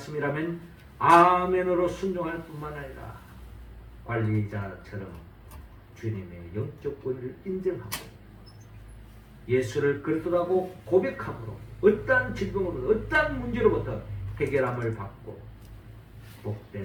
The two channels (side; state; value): both; identical; correlation 1.00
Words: 아멘으로 순종할 뿐만 아니라 관리자처럼 주님의 영적 권위를 인정하고 예수를 그리스도라고 고백함으로 어떠한 질병으로부터 어떠한 문제로부터 해결함을 받고